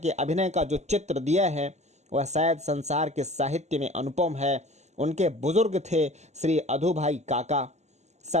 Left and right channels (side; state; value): left; late; 0.33 ms